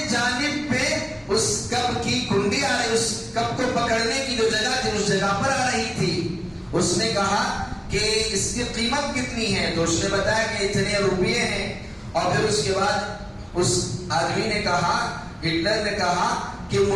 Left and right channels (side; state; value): both; identical; correlation 1.00